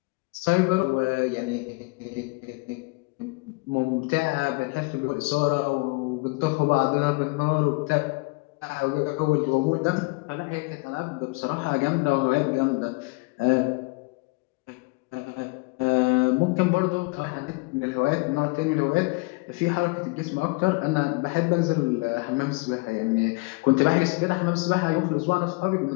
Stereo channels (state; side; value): quieter; right; 27.1 dB